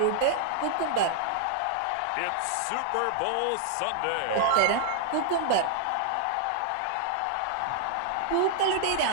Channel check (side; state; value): both; different; correlation -0.01